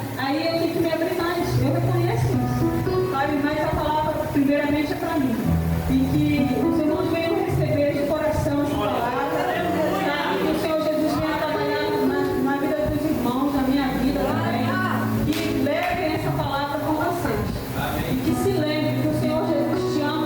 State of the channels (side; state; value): both; identical; correlation 1.00